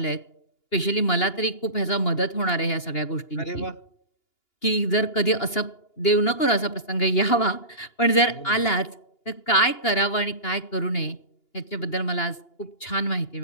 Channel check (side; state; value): right; late; 2.8 ms